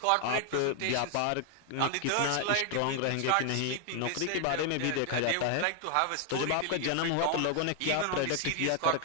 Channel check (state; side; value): different; both; correlation 0.00